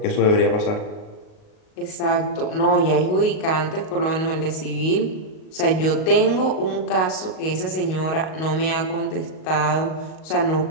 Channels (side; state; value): right; late; 38 ms